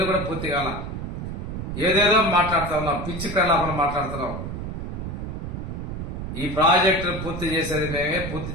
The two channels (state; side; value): noise; right; rumble, 6 dB below the sound